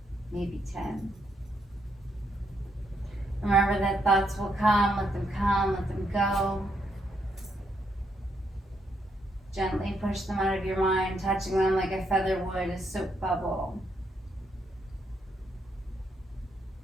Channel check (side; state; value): both; normal; correlation 0.76